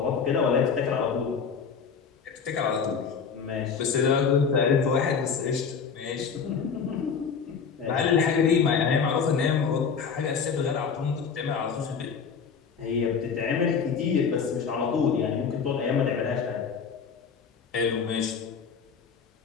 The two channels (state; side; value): quieter; right; 6.1 dB